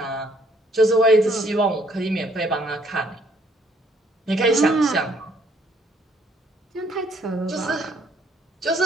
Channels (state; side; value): normal; both; correlation 0.66